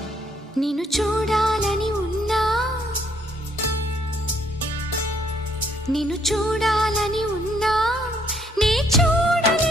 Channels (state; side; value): normal; both; correlation 0.68